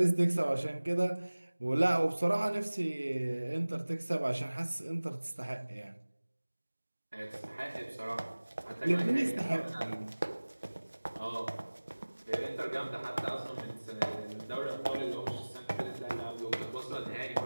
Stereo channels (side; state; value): both; inverted; correlation -1.00